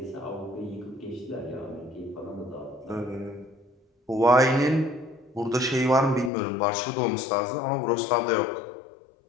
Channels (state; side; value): drops out; right; at 6.3 s